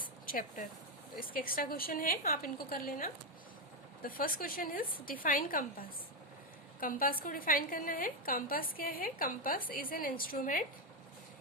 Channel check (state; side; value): normal; both; correlation 0.05